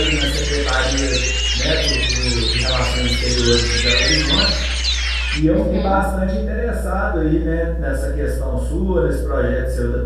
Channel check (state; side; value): identical; both; correlation 1.00